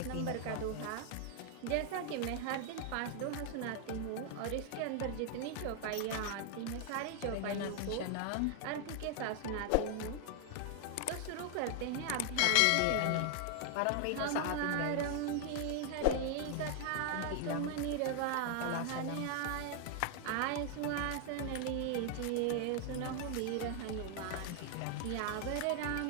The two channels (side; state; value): both; different; correlation 0.00